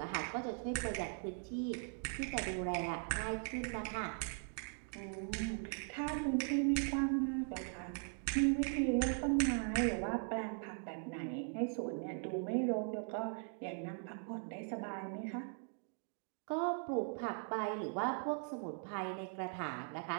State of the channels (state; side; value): silent; left; 51 dB below the other